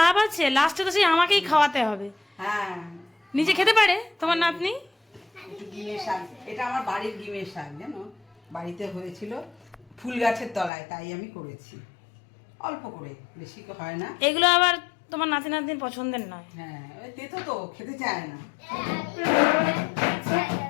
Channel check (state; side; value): drops out; right; at 10.7 s